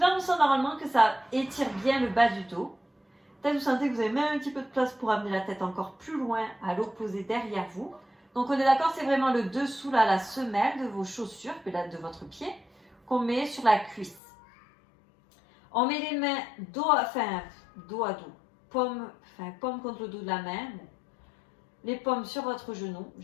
on sent normalement que ça étire bien le bas du dos. Peut-être vous sentez que vous avez même un petit peu de place pour amener la tête encore plus loin à l'opposé derrière vous. Donc on est d'accord, c'est vraiment le dessous, là, la semelle de vos chaussures, de votre pied, qu'on met sur la cuisse. On met les mains dos à dos. paume contre le dos de la main. Bon. Les paumes sur votre genou.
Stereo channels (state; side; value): drops out; right; at 14.2 s